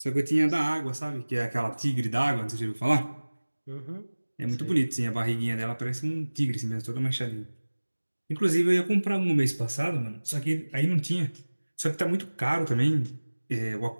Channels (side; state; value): both; inverted; correlation -1.00